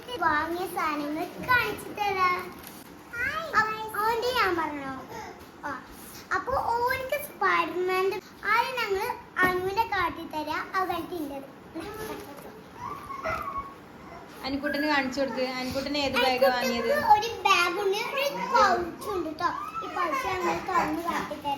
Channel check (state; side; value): identical; both; correlation 1.00